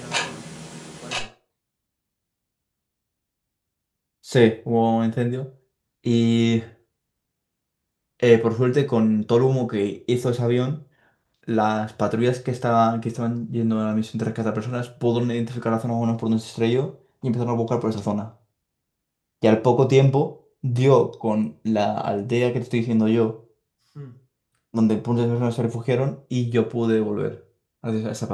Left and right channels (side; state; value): both; identical; correlation 1.00